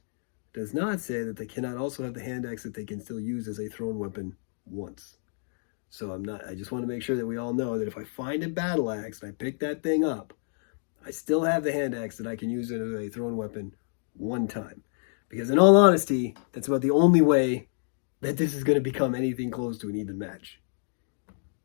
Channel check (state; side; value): silent; right; digital silence